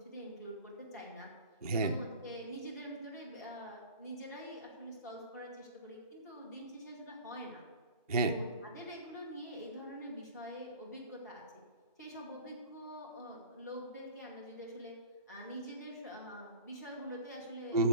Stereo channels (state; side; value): inverted; both; correlation -0.38